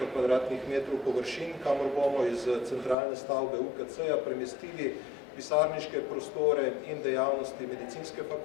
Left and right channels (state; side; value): drops out; right; at 3.0 s